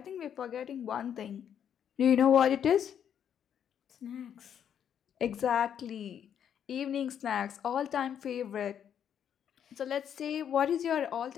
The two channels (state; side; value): quieter; right; 8.9 dB